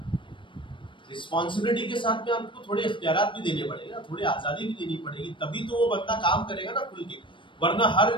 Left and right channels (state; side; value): late; right; 0.24 ms